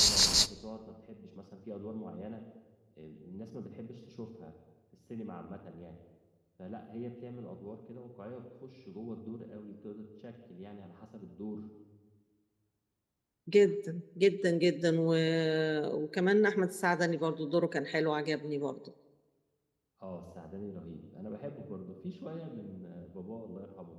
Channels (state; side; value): identical; both; correlation 1.00